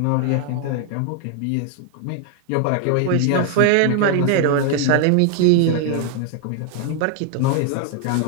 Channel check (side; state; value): both; different; correlation 0.00